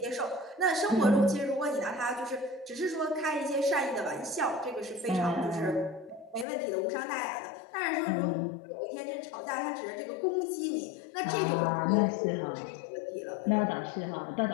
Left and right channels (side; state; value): right; drops out; at 6.5 s